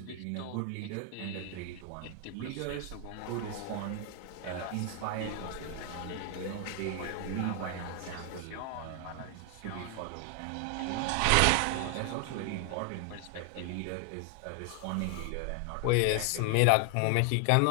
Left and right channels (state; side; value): different; both; correlation 0.00